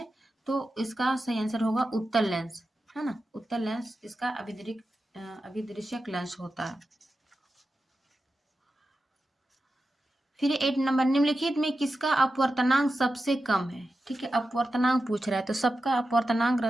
तो इसका सही आंसर होगा उत्तल लेंस, है ना, उत्तल लेंस इसका अभिदृश्यक लेंस होता है। फिर 8 नंबर, निम्नलिखित में किसका अपवर्तनांक सबसे कम है। ठीक है, अपवर्तनांक पूछ रहा है, तो सबका अपवर्तनांक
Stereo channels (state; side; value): normal; both; correlation 0.91